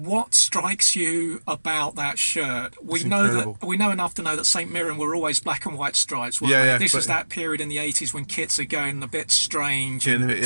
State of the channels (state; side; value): inverted; both; correlation -1.00